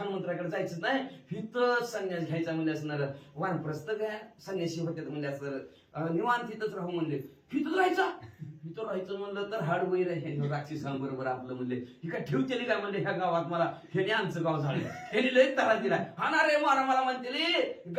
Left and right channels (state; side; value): identical; both; correlation 1.00